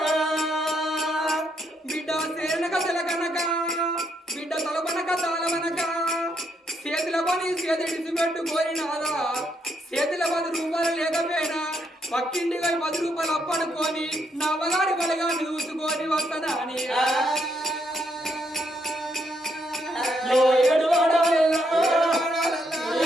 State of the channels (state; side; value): normal; both; correlation 0.76